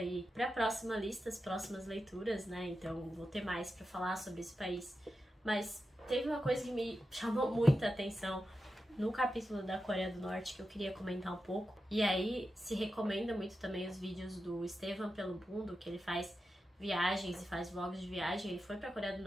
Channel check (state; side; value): normal; both; correlation 0.90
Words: pra próxima lista, as próximas leituras, né? Então vou ter mais pra falar sobre esse país. Mas teve uma coisa que me chamou muita atenção no capítulo da Coreia do Norte que eu queria comentar um pouco. E aí se recomenda muito também os vídeos do Estevam pelo Mundo, que ele faz viagens e faz vlogs de viagem. Ele foi pra Coreia do